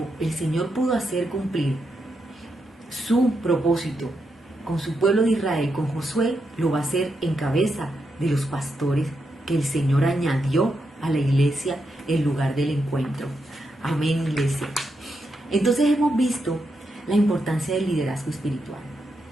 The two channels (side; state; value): both; normal; correlation 0.84